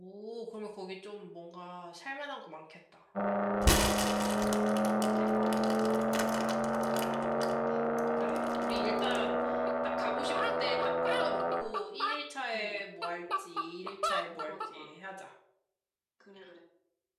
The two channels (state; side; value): identical; both; correlation 1.00